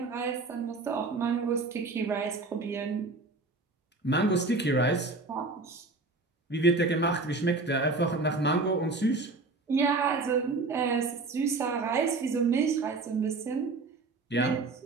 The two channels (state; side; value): quieter; left; 3.6 dB